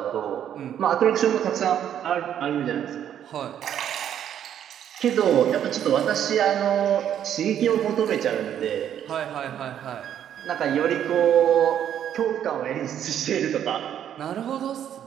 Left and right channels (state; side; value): quieter; left; 9.9 dB